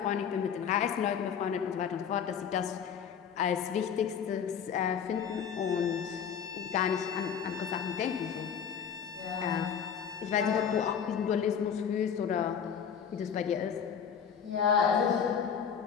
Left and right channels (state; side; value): quieter; right; 7.6 dB